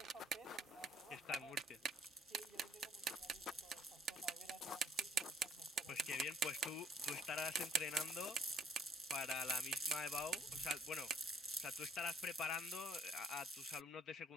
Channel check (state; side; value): normal; both; correlation 0.61